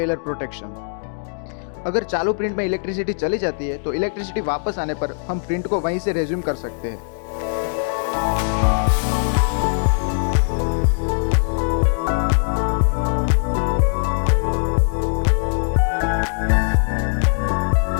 प्रोटेक्शन। अगर चालू प्रिंट में इलेक्ट्रिसिटी चली जाती है तो इलेक्ट्रिसिटी वापस आने पर हम प्रिंट को वहीं से रेज्यूम कर सकते हैं।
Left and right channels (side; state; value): right; silent; digital silence